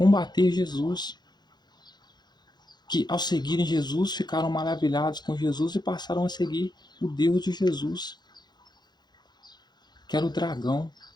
Jesus. Que ao seguirem Jesus ficaram maravilhados com Jesus e passaram a seguir o Deus de Jesus, que era o dragão.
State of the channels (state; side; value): late; right; 0.21 ms